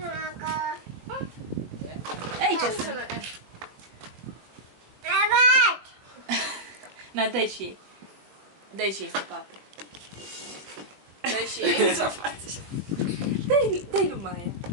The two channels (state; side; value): late; left; 21 ms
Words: Aici sunt. Na, dai și ei. Dai și ei să papă. Dai și ei. Ce-o faci? Dai lui Maia.